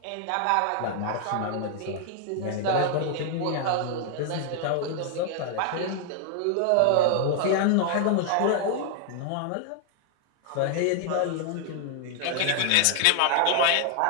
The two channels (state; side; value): different; both; correlation 0.00